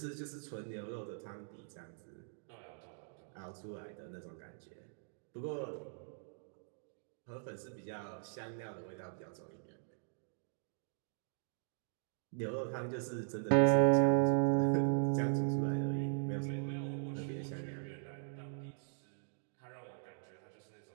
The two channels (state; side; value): silent; left; digital silence